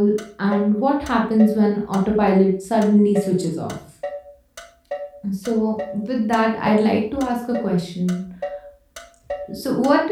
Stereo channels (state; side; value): identical; both; correlation 1.00